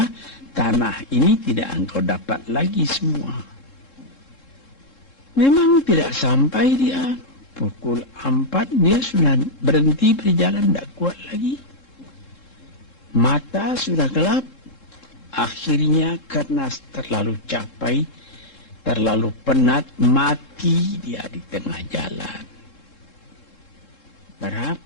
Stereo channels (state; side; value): late; right; 3.7 ms